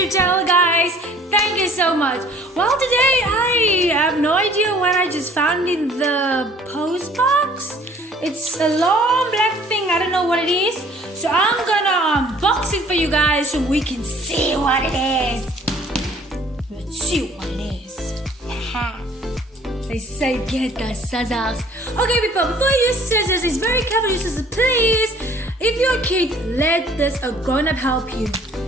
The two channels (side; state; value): both; normal; correlation 0.54